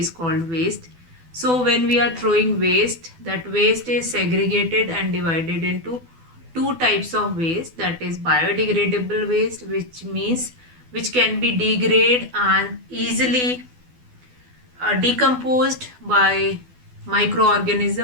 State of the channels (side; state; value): left; late; 12 ms